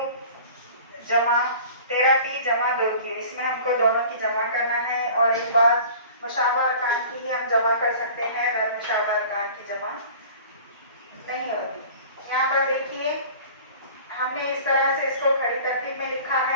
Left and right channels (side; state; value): both; inverted; correlation -0.44